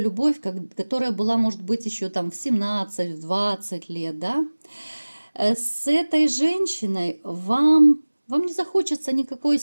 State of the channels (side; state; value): both; inverted; correlation -1.00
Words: которая была, может быть, еще там в 17, в 20 лет, да. С этой женщиной вам не захочется никакой